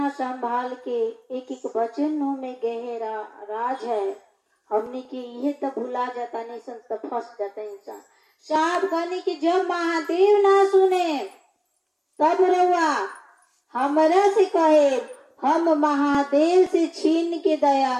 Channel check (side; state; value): both; identical; correlation 1.00